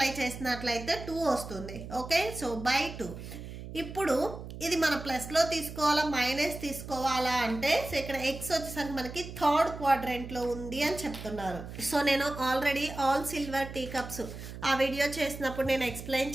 చేసినట్లయితే 2 వస్తుంది. Okay, so /2. ఇప్పుడు ఇది మన ప్లస్లో తీసుకోవాలా మైనస్ తీసుకోవాలా అంటే సో ఇక్కడ ఎక్స్ వచ్చేసరికి మనకి థర్డ్ క్వాడ్రెంట్లో ఉంది అని చెప్తున్నారు. సో నేను already all silver tea cups ఆ వీడియో చేసినప్పుడు నేను ఎక్స్ప్లెయిన్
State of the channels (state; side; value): noise; right; hum, 11 dB below the sound